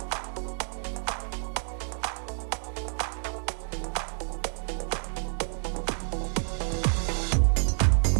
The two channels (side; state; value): left; silent; digital silence